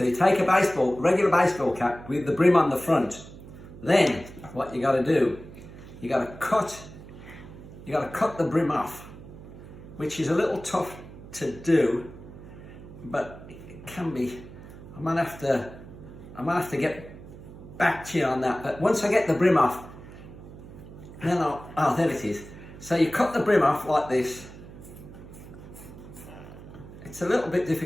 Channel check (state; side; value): noise; right; hum, 16 dB below the sound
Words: you take a regular baseball cap with the brim on the front. Then what you got to do, you got to cut the brim off, which is a little tough to do, but it can be. I might have to get back to you on that. But once I get the brim off, then there it is. So you cut the brim off like this. It's a little bit